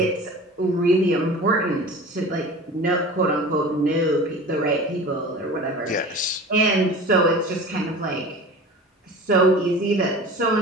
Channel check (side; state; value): both; normal; correlation 0.37